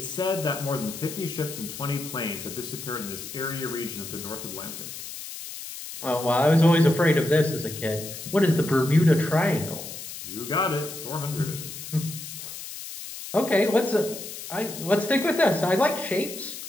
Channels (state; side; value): noise; left; hiss, 10 dB below the sound